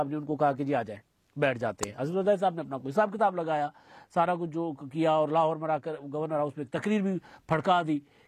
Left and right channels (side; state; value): both; identical; correlation 1.00